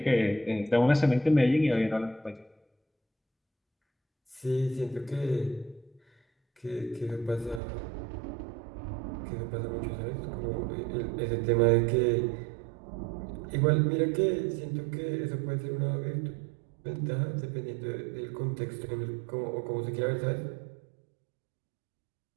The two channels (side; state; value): left; drops out; at 7.6 s